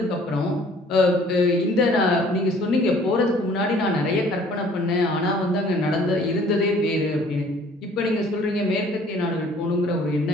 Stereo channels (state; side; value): normal; both; correlation 0.55